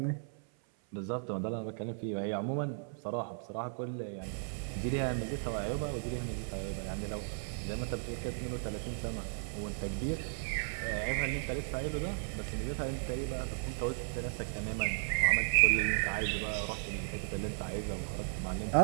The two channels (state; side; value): silent; left; 54 dB below the other